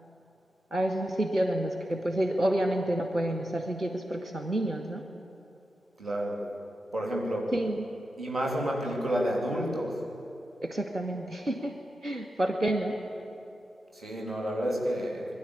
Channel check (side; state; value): both; normal; correlation 0.89